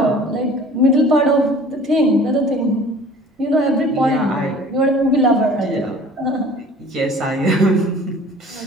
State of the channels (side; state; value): both; normal; correlation 0.47